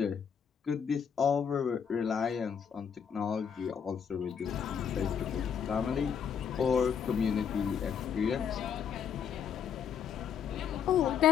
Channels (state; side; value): quieter; right; 7.4 dB